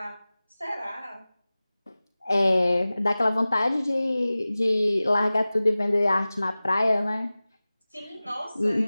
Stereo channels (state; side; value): inverted; both; correlation -0.97